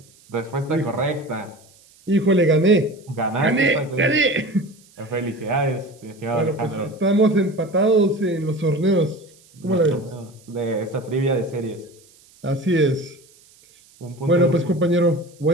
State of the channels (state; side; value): noise; right; hiss, 28 dB below the sound